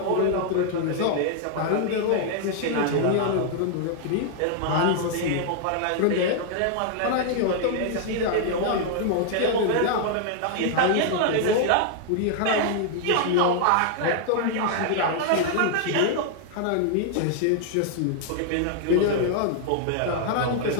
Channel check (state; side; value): different; both; correlation 0.00